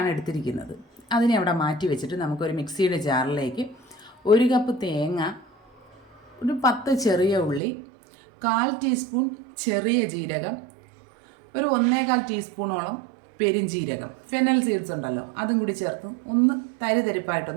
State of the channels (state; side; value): drops out; left; at 7.6 s